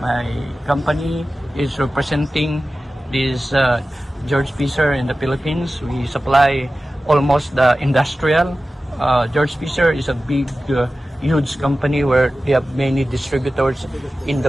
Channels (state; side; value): normal; both; correlation 0.95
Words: company, is representing this Georg in the Philippines. We supply almost the industrial. Georg is a big huge company where they have many distributors in